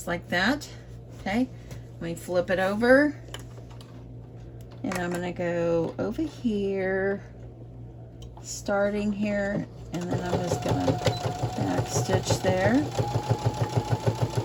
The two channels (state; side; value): identical; both; correlation 1.00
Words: like that. Okay, let me flip it over. And I'm going to go over here, starting here, and then I'm just going to back stitch there.